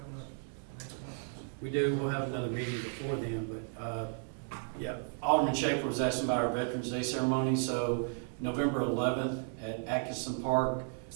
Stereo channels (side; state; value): left; silent; 55 dB below the other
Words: up next month? We do, we'll have another meeting before then, but, yeah, Alderman Schaefer was asking about our Veterans Day ceremony, so November 11th at Atkinson Park,